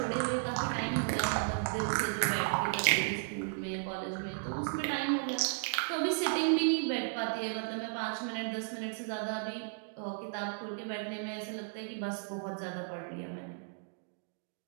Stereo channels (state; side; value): silent; left; digital silence